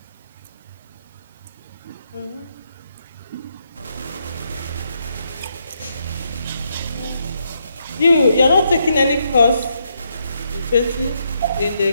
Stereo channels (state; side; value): inverted; both; correlation -0.78